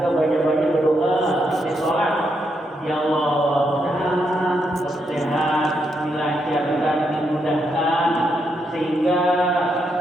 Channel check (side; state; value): both; normal; correlation 0.80